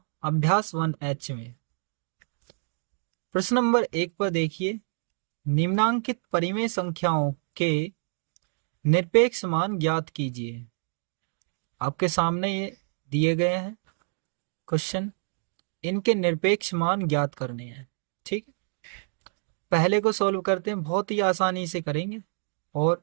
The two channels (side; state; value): left; silent; 60 dB below the other